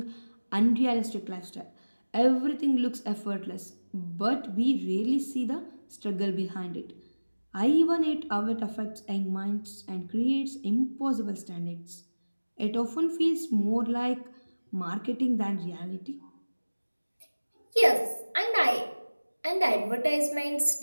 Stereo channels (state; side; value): inverted; both; correlation -1.00